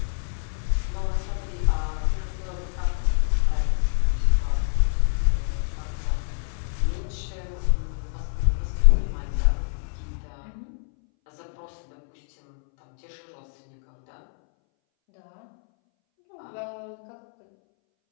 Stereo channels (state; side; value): silent; right; 61 dB below the other